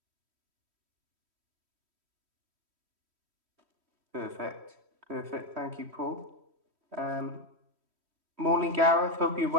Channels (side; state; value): left; late; 3.1 ms